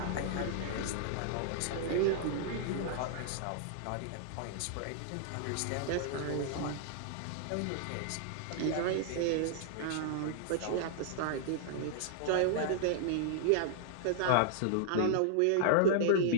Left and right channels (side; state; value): both; different; correlation -0.01